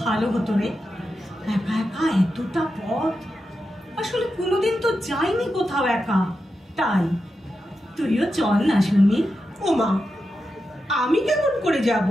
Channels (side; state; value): both; normal; correlation 0.89